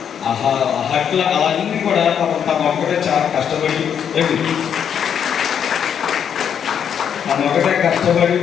హట్ల అవన్నీ కూడా తను ఒక్కటే చాలా కష్టపడి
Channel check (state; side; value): quieter; right; 8.2 dB